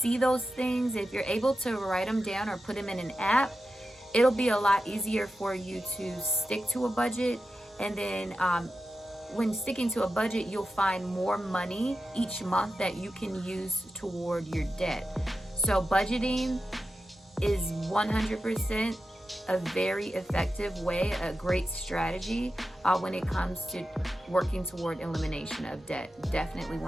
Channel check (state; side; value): normal; both; correlation 0.91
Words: those things, if you're able to write them down or put them in an app, it'll be a lot easier for you to stick to a budget. And then when sticking to a budget, you'll find more money each month that you can use toward your debt. So budgeting is 100% a very effective way, a great strategy when it comes to working toward elimination of debt. Definitely